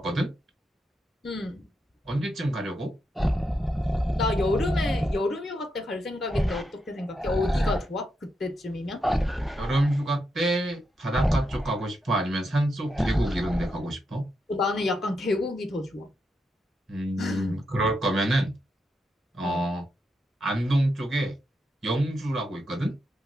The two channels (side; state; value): both; normal; correlation 0.84